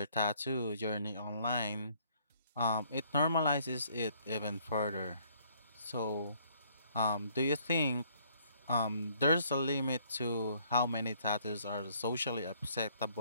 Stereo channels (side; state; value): both; inverted; correlation -0.64